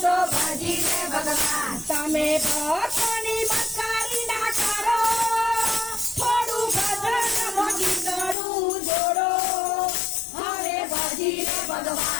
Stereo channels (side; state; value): right; drops out; at 8.3 s